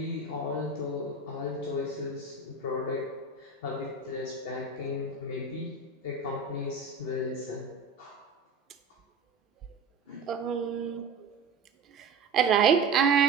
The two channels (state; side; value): quieter; left; 4.2 dB